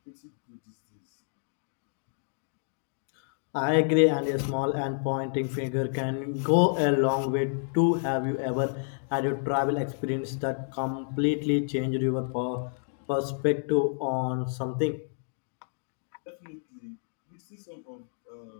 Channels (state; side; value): silent; right; digital silence